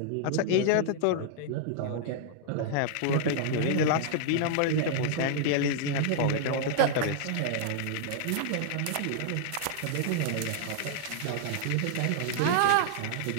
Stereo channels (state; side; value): different; both; correlation -0.01